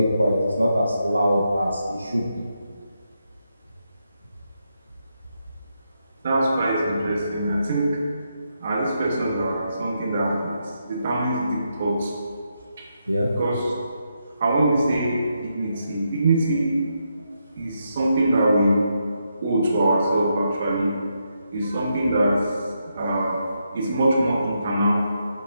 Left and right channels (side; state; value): both; inverted; correlation -0.82